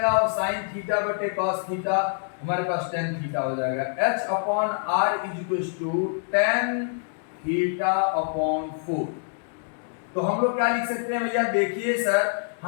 और साइन थीटा बटे कॉस थीटा हमारे पास tan थीटा हो जाएगा। h upon r equals to tan theta upon 4। तो हम लोग क्या लिख सकते हैं भैया, देखिए सर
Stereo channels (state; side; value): silent; right; digital silence